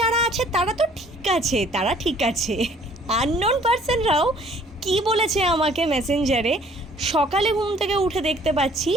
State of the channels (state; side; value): normal; both; correlation 0.57